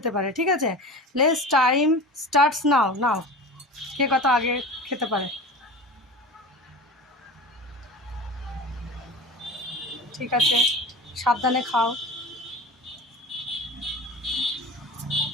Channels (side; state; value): both; normal; correlation 0.34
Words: পারে। ঠিক আছে, লেটস টাইম স্টার্টস নাও। নাও কে কত আগে খেতে পারে। ঠিক আছে, সাবধানে খাও।